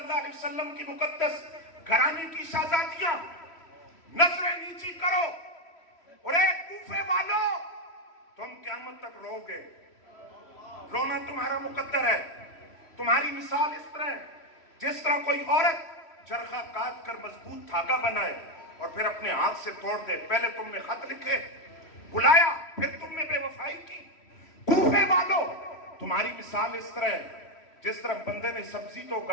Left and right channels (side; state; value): right; late; 3.1 ms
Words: अलैहि वसल्लम की मुकद्दस घराने की शहजादियां। नजरें नीची करो। और एक कूफे वालों, तुम क़यामत तक रोगे, रोना तुम्हारा मुकद्दर है। तुम्हारी मिसाल इस तरह है जिस तरह कोई औरत चरखा काट कर मजबूत धागा बनाए और फिर अपने हाथ से तोड़ दे। पहले तुमने खत लिखे, बुलाया, फिर तुमने बेवफाई की। कूफे वालों, तुम्हारी मिसाल इस तरह है जिस तरह बंदे ने सब्जी तो